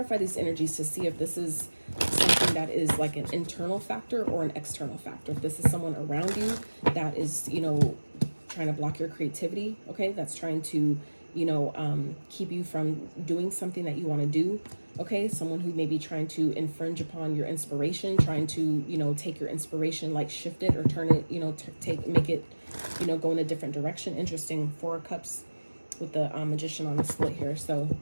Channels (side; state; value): both; inverted; correlation -1.00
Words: these energies to see if this is something that is like an internal factor or an external factor. If this is someone around you that is, you know, trying to block your creativity, okay, that's trying to, you know, keep you from doing something that you want to do, okay, someone who may be trying to infringe upon your inspiration, trying to, you know, take your inspiration, like shift it or turn it, you know, make it, you know, go in a different direction. Interesting, 4 of Cups with the Magician on the split here. So